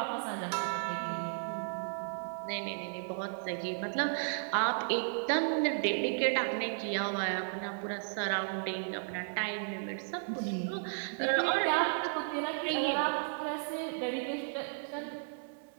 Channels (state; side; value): silent; left; 55 dB below the other